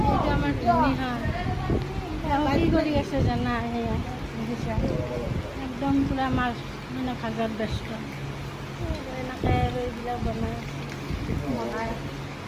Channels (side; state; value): both; identical; correlation 1.00